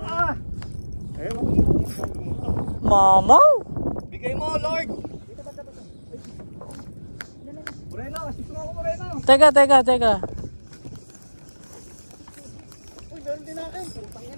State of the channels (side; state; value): both; inverted; correlation -1.00